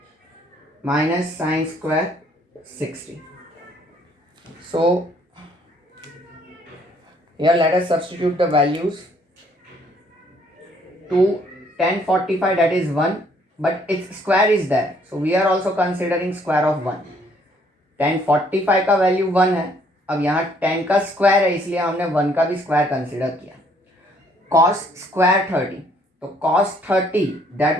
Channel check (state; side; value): normal; both; correlation 0.64